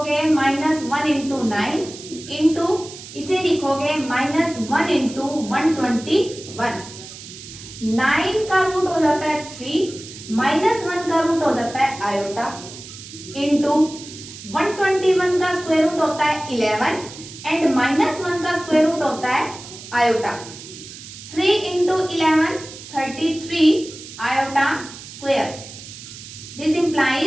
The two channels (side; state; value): right; noise; hiss, 15 dB below the sound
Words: -1 इंटू 9 इंटू इसे लिखोगे -1 इंटू 121। 9 का रूट हो जाता है 3, -1 का रूट हो जाता है आयोटा इंटू 121 का स्क्वायर रूट होता है 11 एंड -1 का स्क्वायर रूट होता है iota. 3 into 11 33 iota square. This